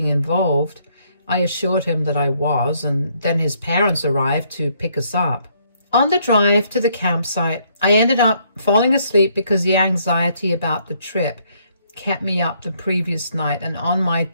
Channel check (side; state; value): both; inverted; correlation -0.69